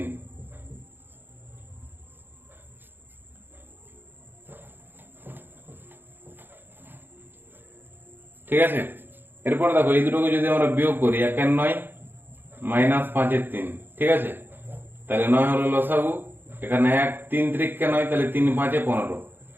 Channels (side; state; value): left; late; 0.097 ms